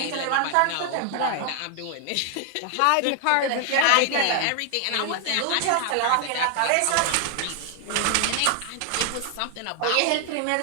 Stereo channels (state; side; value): different; both; correlation 0.00